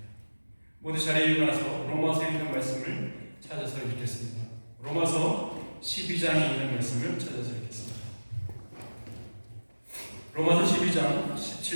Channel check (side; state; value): both; inverted; correlation -1.00